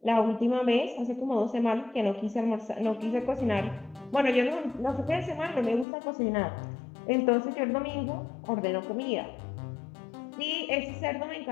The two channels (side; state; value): right; drops out; at 5.9 s